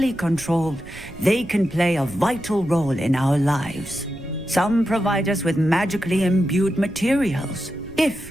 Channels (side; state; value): right; noise; rumble, 17 dB below the sound